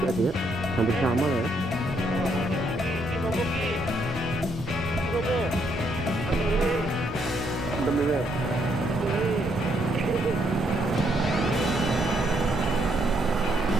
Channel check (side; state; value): both; normal; correlation 0.73